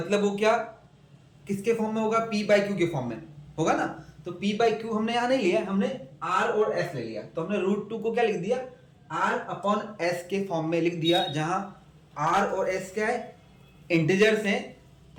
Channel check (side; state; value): both; identical; correlation 1.00